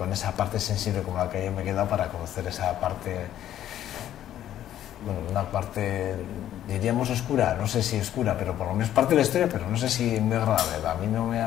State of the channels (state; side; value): quieter; right; 11.7 dB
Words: esa parte sensible como la que yo me he quedado, para conocer esa parte, bueno, una parte diríamos oscura, no sé si oscura, pero por lo menos parte de la historia, pero no sé si muy agradable. A mí no me